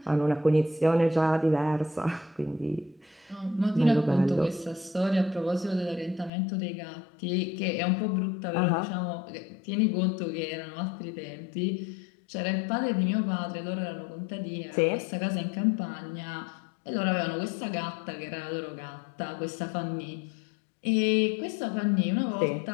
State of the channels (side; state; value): right; drops out; at 6.3 s